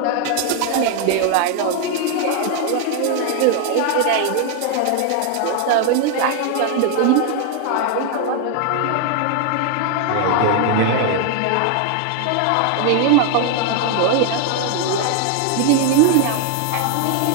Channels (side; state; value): both; different; correlation 0.00